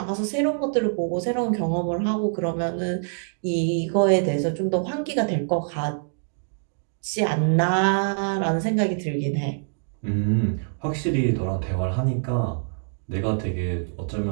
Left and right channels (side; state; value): left; silent; digital silence